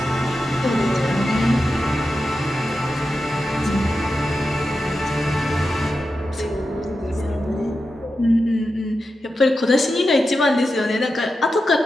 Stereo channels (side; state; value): both; normal; correlation 0.90